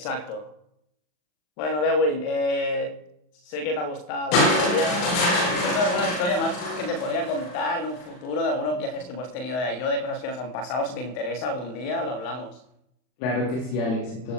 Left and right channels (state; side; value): late; right; 40 ms